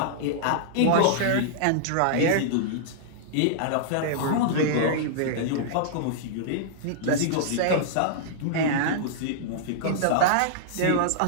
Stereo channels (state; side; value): different; both; correlation -0.02